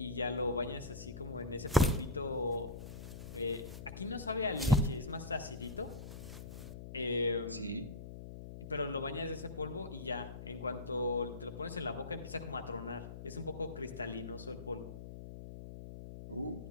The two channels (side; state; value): left; noise; hum, 10 dB below the sound